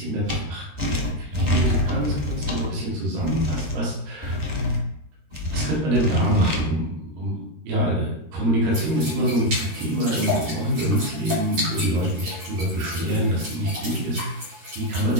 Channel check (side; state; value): left; late; 13 ms